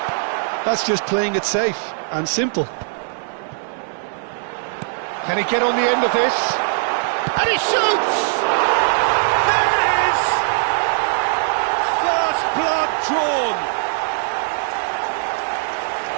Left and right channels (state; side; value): silent; left; digital silence